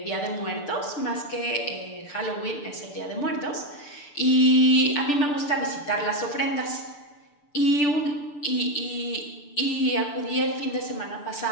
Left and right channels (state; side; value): late; right; 6.8 ms